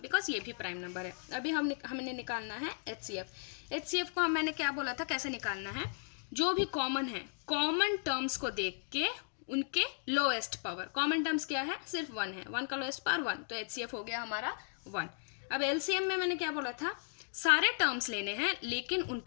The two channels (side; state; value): right; silent; digital silence